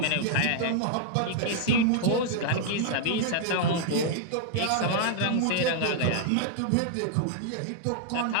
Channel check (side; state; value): both; different; correlation 0.00